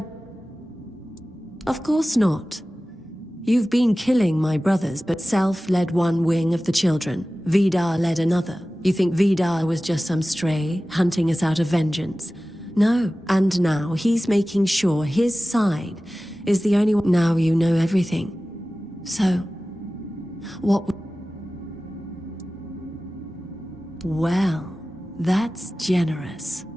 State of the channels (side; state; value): both; normal; correlation 0.96